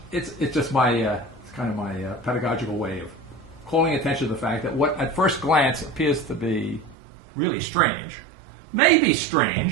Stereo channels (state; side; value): drops out; left; at 7.0 s